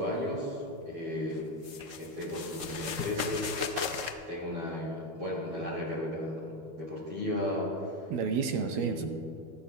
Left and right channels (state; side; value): late; left; 12 ms